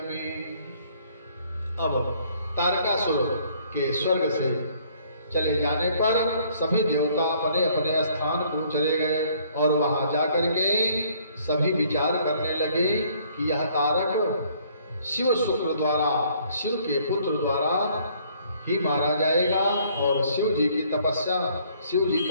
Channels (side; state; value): both; inverted; correlation -0.62